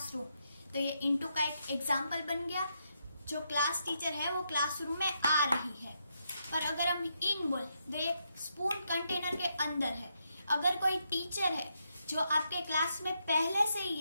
तो ये इनटू का एक एग्जाम्पल बन गया। जो क्लास टीचर है वो क्लासरूम में आ रही है। और अगर हम इन बोल, तो एक स्पून कंटेनर के अंदर है। अगर कोई टीचर है जो आपके क्लास में पहले से ही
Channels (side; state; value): both; inverted; correlation -0.81